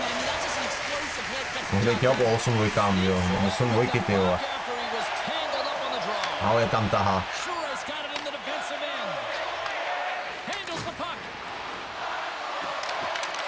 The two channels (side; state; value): both; identical; correlation 1.00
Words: that's just an explosive hit. Gets Může jít jo po 8 dvojkám, jo. 8 dvojky, ty vole. after he was tangled up on the draw. Ale tam tahá. Suarez got it in the defensive end. Handles the puck.